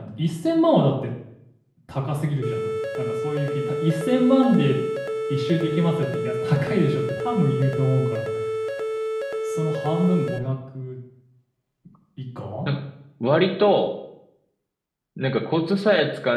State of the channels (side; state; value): both; identical; correlation 1.00